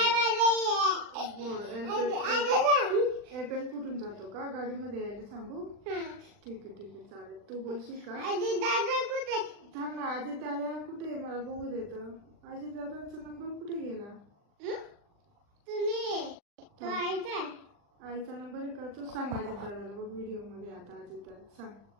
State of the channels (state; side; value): late; left; 40 ms